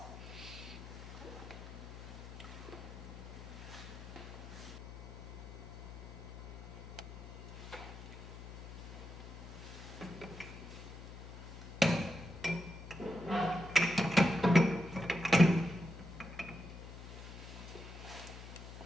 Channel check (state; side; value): noise; left; hum, 12 dB below the sound